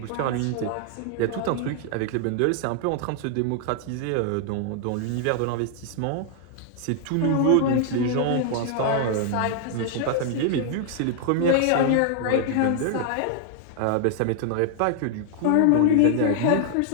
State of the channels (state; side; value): different; both; correlation 0.00